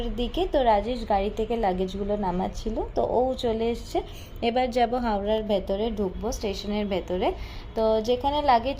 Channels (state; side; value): identical; both; correlation 1.00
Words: দিকে। তো রাজেশ গাড়ি থেকে লাগেজগুলো নামাচ্ছিল, তো ও চলে এসছে। এবার যাব হাওড়ার ভেতরে, ঢুকবো স্টেশনের ভেতরে। তো যেখানে লাগেজ